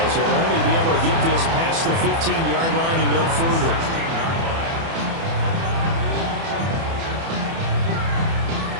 as he'll only be able to get this past the 15-yard line and no further.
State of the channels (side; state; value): left; late; 30 ms